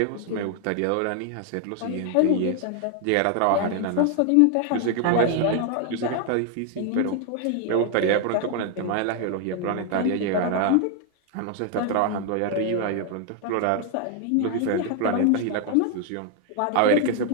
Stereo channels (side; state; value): both; different; correlation 0.00